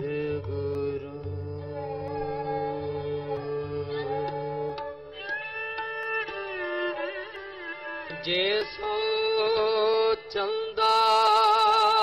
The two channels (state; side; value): identical; both; correlation 1.00